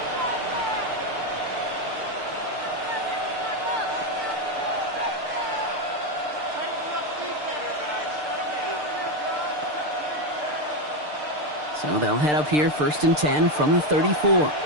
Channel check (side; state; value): left; late; 6.7 ms